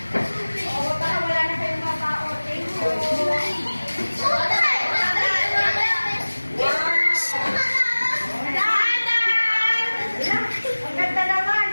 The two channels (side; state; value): both; inverted; correlation -1.00